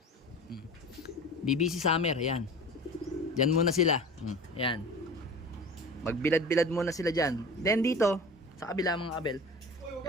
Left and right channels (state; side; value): normal; both; correlation 0.37